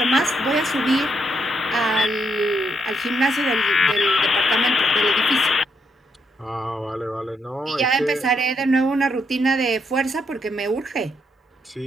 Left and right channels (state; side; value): normal; both; correlation 0.77